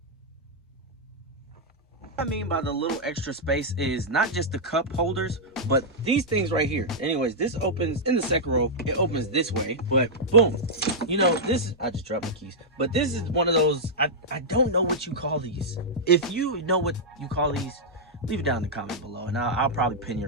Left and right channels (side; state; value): both; normal; correlation -0.07